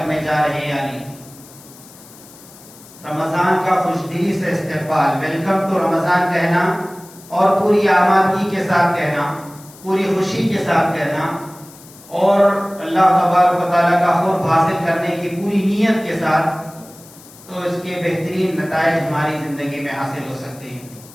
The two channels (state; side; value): noise; left; hiss, 22 dB below the sound